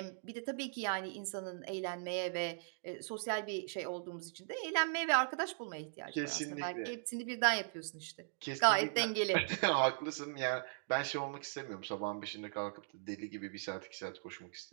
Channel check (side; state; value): left; silent; digital silence